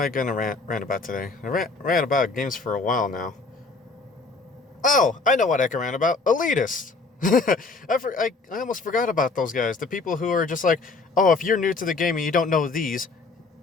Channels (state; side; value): quieter; right; 3.9 dB